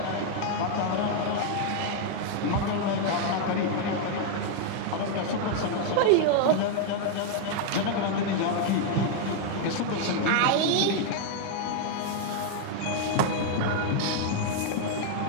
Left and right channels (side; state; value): both; different; correlation 0.00